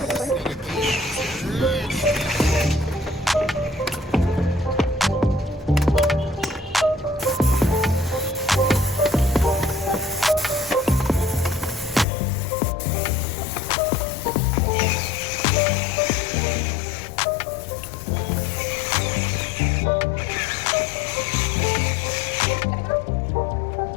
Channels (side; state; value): right; drops out; at 12.1 s